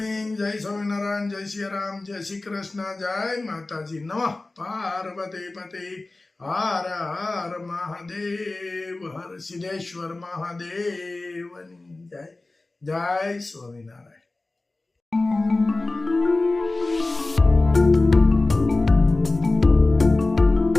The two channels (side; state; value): right; quieter; 3.1 dB